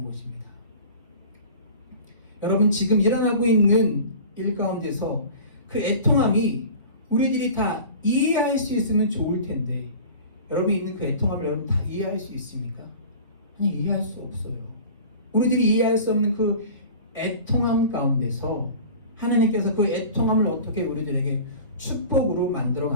것입니다. 여러분 지금 일어나고 있는 일 가운데서 그 애통함이 우리들이 다 이해할 수 있으면 좋을 텐데, 여러분이 있는 그 애통함을 여러분 다 이해할 수 있습니까? 아니, 이해할 수 없어요. 우리들이 이해할 수 없는 그 애통함 가운데서 하나님께서 그 애통함을 어떻게 우리들에게 축복으로 만들어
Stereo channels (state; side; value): inverted; both; correlation -0.40